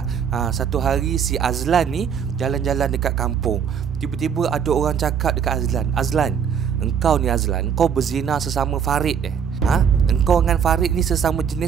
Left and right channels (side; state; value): left; quieter; 7.6 dB